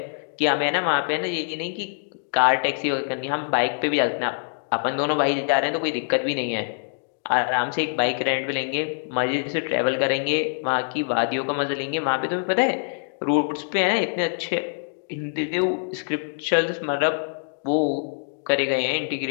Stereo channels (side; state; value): right; silent; digital silence